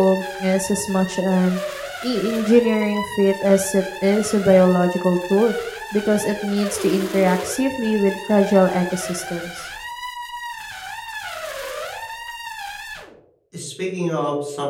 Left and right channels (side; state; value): both; identical; correlation 1.00